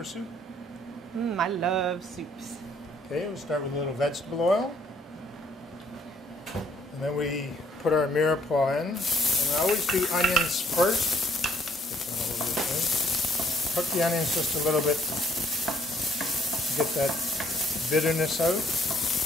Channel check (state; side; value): normal; both; correlation 0.64